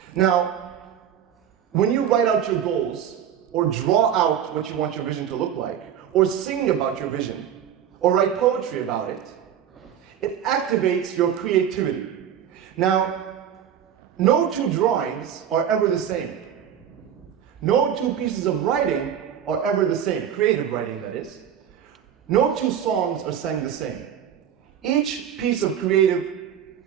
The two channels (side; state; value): left; quieter; 9.3 dB